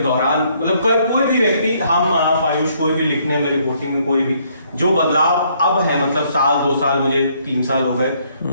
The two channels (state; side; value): inverted; both; correlation -0.68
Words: दौरान, मतलब कोई भी व्यक्ति, हम आप आयुष, कोई भी लिखने में, रिपोर्टिंग में, कोई भी जो बदलाव अब है, मतलब साल 2 साल, मुझे 3 साल हो गए,